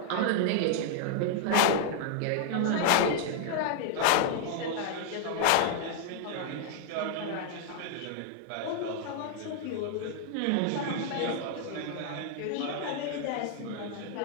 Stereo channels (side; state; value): both; different; correlation 0.00